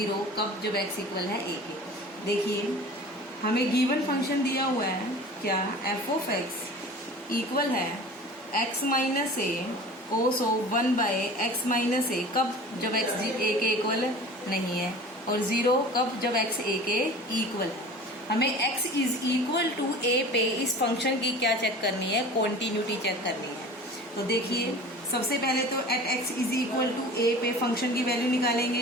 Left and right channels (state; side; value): normal; both; correlation 0.40